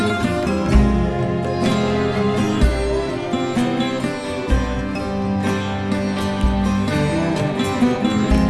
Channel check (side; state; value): both; identical; correlation 1.00